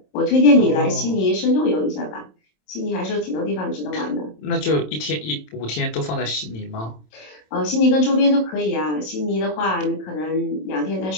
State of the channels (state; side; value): late; right; 27 ms